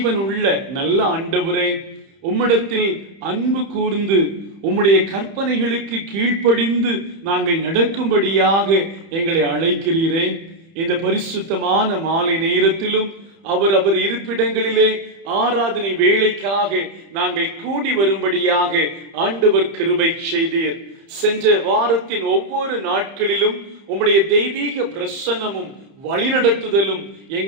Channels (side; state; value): left; late; 30 ms